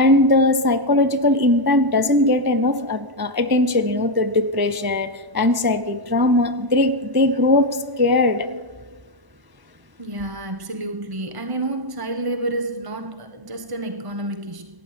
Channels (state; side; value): late; left; 1.0 ms